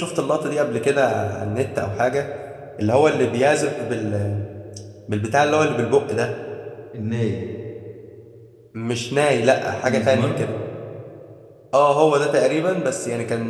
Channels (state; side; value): identical; both; correlation 1.00